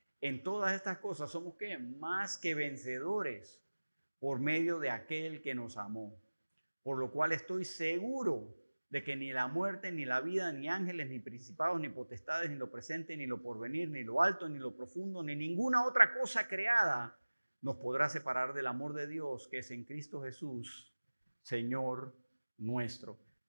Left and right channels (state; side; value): inverted; both; correlation -1.00